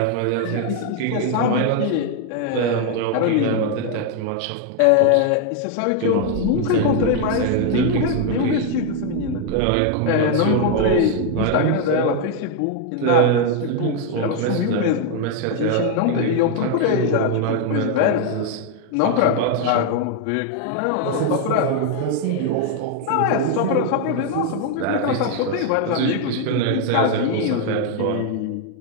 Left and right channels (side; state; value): both; different; correlation 0.00